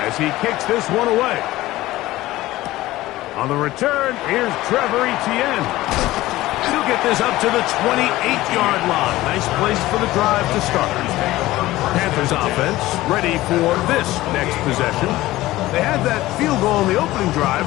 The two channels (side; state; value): right; quieter; 17.1 dB